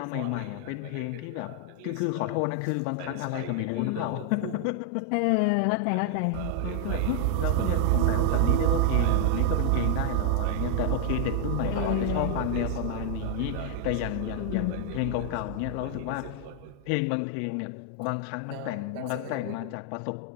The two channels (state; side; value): different; both; correlation 0.00